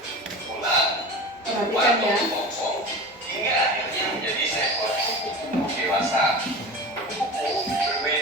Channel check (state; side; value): normal; both; correlation 0.33